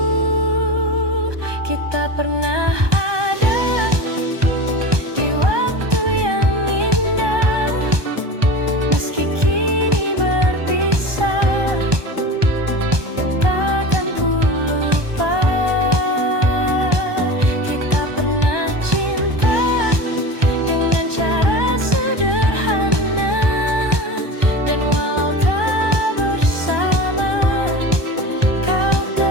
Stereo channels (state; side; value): late; left; 1.2 ms